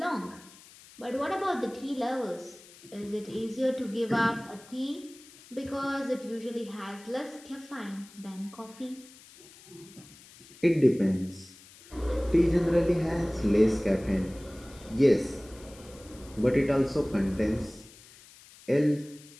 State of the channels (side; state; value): left; noise; hiss, 22 dB below the sound